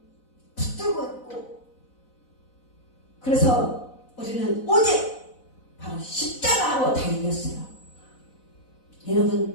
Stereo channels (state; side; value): late; right; 4.0 ms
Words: 붙들고 있고 그래서 우리는 오직 바로 십자가로 다 이겼어요.